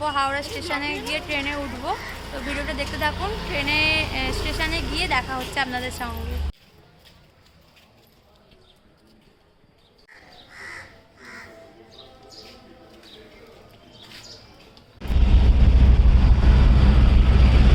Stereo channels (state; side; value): identical; both; correlation 1.00